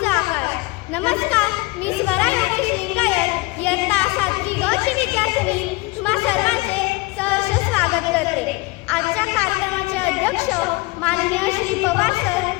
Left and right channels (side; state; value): right; quieter; 23.3 dB